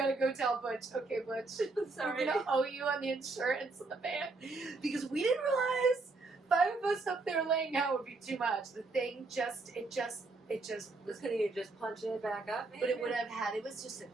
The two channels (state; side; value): quieter; left; 3.6 dB